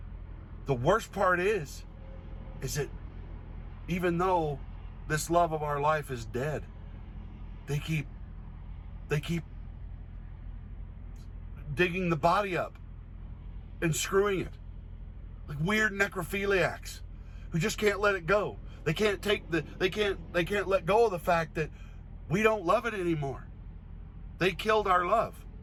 the worst part is that even though this love of our life is dead, they keep digging the body up and screwing it, like weird necrophiliacs who just can't let it go. They can't let go of the fact that we don't love it anymore. They killed our love,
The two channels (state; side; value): identical; both; correlation 1.00